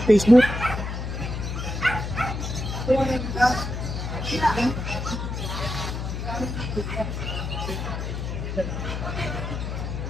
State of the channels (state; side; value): noise; left; hum, 4 dB below the sound